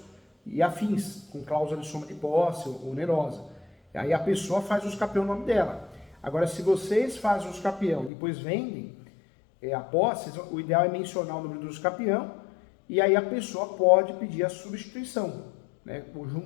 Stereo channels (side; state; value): right; drops out; at 8.1 s